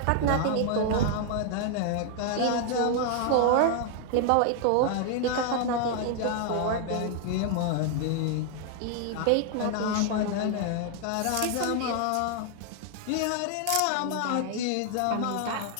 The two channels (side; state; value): both; different; correlation 0.00